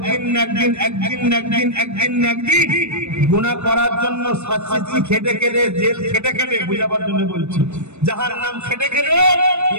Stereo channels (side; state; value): left; late; 0.82 ms